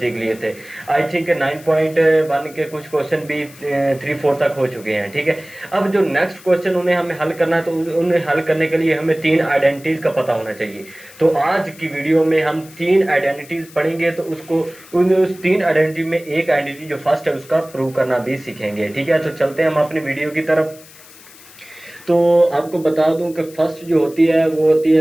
लिए थे। आई थिंक 9.1 के कुछ क्वेश्चन भी 3-4 तक हो चुके हैं, ठीक है। अब जो नेक्स्ट क्वेश्चन उन्हें हमें हल करना है, तो उन्हें हल करने के लिए हमें 3 आइडेंटिटीज का पता होना चाहिए। तो आज की वीडियो में हम 3 आइडेंटिटीज पढ़ेंगे। तो उस 3 आइडेंटिटी में एक आइडेंटिटी जो फर्स्ट है उसका प्रूव करना भी सीखेंगे, ठीक है। तो चलते हैं हम अपनी वीडियो की तरफ। तो आपको बता दूं कि फर्स्ट जो होती है वो होती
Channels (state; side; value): noise; left; hiss, 22 dB below the sound